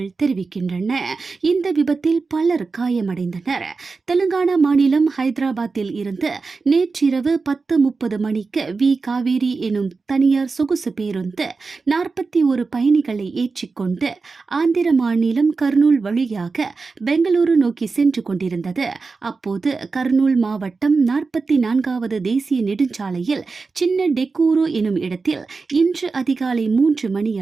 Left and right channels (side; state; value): left; quieter; 4.3 dB